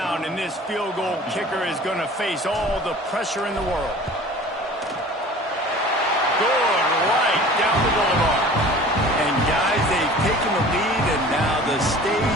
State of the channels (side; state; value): both; normal; correlation 0.44